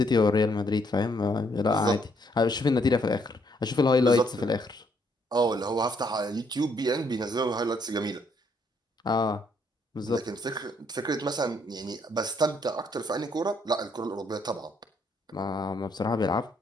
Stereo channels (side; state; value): both; normal; correlation 0.70